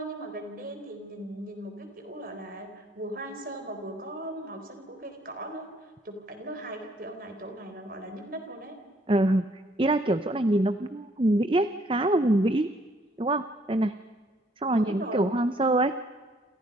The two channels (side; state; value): both; normal; correlation 0.65